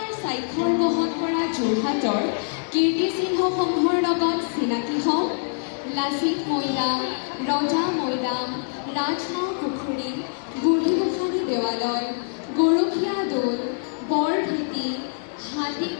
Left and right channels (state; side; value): silent; right; digital silence